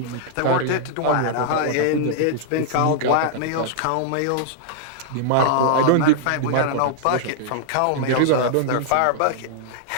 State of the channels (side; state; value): both; different; correlation -0.01